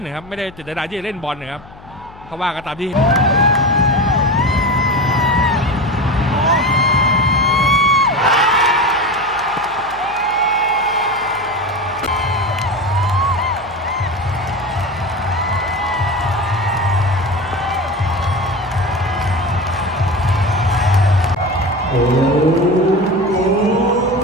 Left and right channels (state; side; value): noise; left; hum, 21 dB below the sound